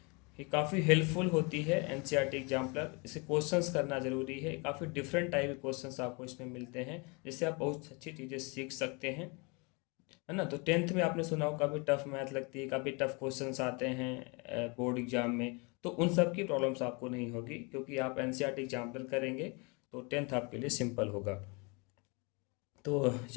ये काफ़ी हेल्पफुल होती है एनसीईआरटी एग्जाम्पलर। इसे क्वेश्चंस करना ज़रूरी है। काफ़ी डिफरेंट टाइप के क्वेश्चंस आपको इसमें मिलते हैं जिससे आप बहुत अच्छी चीज़ें सीख सकते हैं, है ना। तो टेंथ में आपने सुना हो काफ़ी टफ मैथ लगती है, काफ़ी टफ क्वेश्चंस आते हैं बोर्ड एग्जाम में। तो उन सब की प्रॉब्लम्स आपको नहीं होगी क्योंकि आप एनसीईआरटी एग्जाम्पल करेंगे तो टेंथ आपके लिए सिंपल होगा। तो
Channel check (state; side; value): quieter; right; 30.4 dB